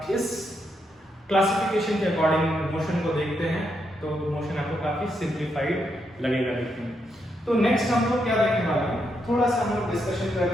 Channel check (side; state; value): both; normal; correlation 0.80